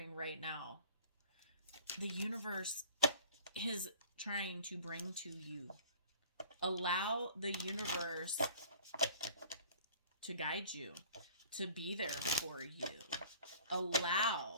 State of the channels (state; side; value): inverted; both; correlation -0.47